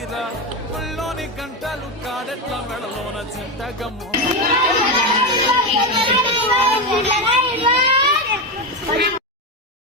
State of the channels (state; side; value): normal; both; correlation 0.12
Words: ఒళ్ళోని గంటలు కాడెట్ల మెడలోన చింతగమ్ము